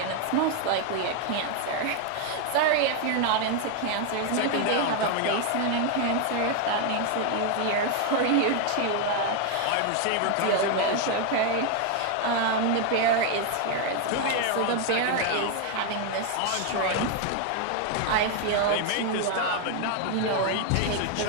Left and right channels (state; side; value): different; both; correlation 0.01